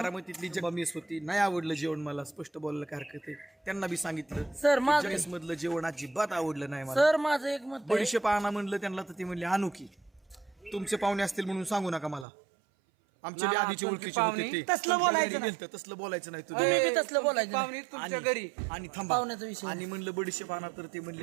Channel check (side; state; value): left; drops out; at 12.2 s